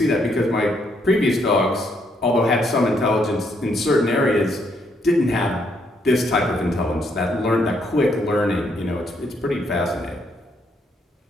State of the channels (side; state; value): both; normal; correlation 0.73